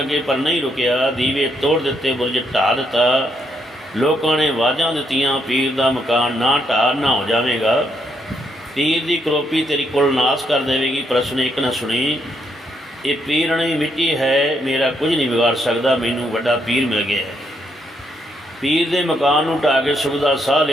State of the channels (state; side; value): normal; both; correlation 0.76